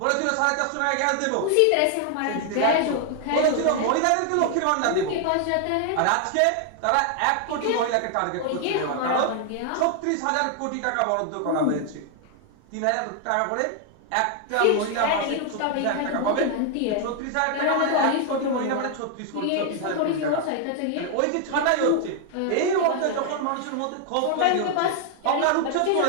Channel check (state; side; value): different; both; correlation 0.00